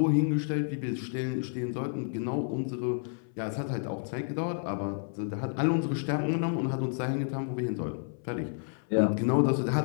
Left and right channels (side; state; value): right; silent; 58 dB below the other